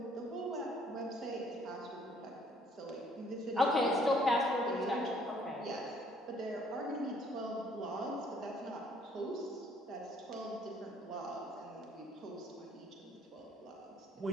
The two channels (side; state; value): both; normal; correlation 0.62